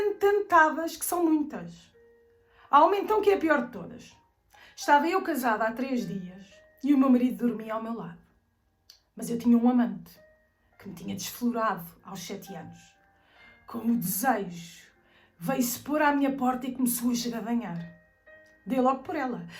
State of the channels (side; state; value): both; identical; correlation 1.00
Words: que são muitas. Há uma então que é a pior de todas. Estava eu casada há 3 dias e o meu marido dormia ao meu lado. Mas eu tinha um amante que me tinha desflorado aos 7 anos. Com o desejo, veio-se pôr à minha porta e começou a esgadanhar. Dei logo por ela.